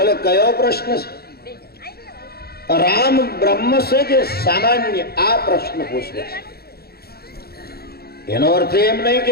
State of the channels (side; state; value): right; late; 0.46 ms